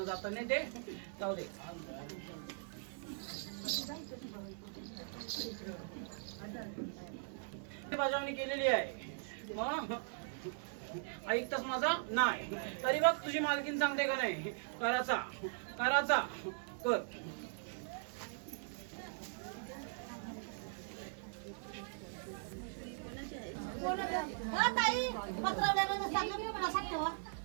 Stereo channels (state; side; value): silent; left; 51 dB below the other